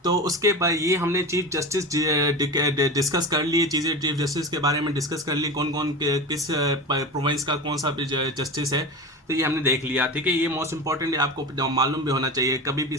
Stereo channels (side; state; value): both; normal; correlation 0.27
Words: तो उसके बाद ये हमने चीफ जस्टिस डिस्कस कर लिए चीज़ें, चीफ जस्टिस के बारे में डिस्कस कर ली, कौन कौन किस प्रोविंस का कौन सा जस्टिस है, तो ये हमने देख लिया। ठीक है, ये मोस्ट इंपॉर्टेंट है, आपको मालूम भी होना चाहिए, कभी भी